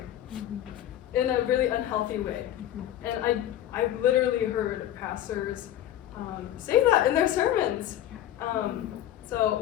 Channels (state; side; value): quieter; right; 12.1 dB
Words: in a really unhealthy way. And I've literally heard pastors say that in their sermons. So